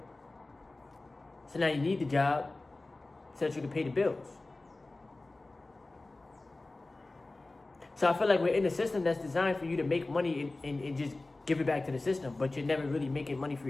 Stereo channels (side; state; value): right; quieter; 3.1 dB